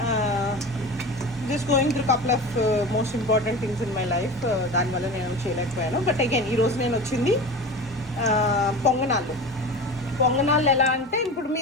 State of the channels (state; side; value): normal; both; correlation 0.32